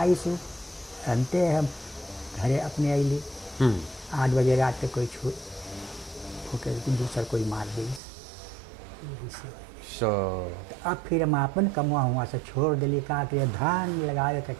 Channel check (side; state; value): left; drops out; at 8.0 s